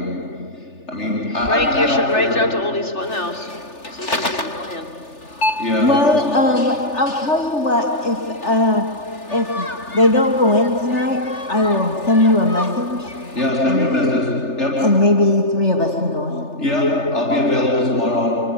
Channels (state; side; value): late; right; 3.4 ms